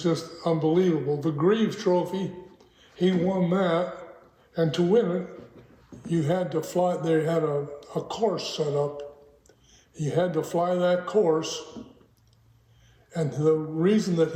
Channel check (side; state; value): both; identical; correlation 1.00